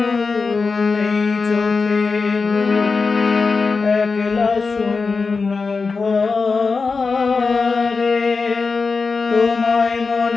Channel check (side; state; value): right; quieter; 4.5 dB